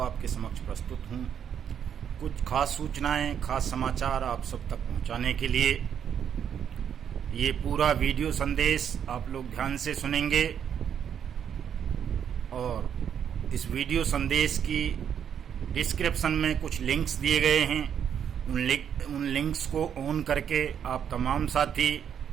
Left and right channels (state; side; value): quieter; left; 8.4 dB